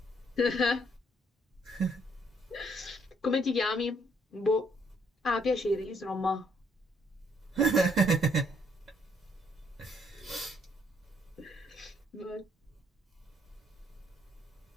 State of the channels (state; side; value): normal; both; correlation 0.68